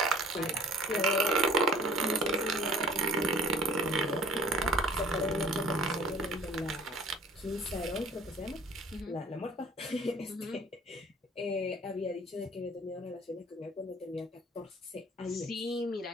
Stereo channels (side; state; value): both; normal; correlation 0.51